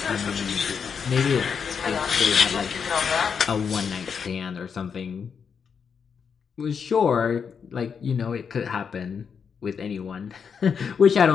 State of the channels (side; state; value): right; quieter; 6.5 dB